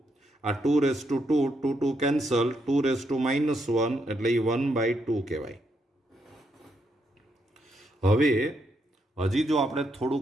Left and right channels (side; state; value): both; normal; correlation 0.78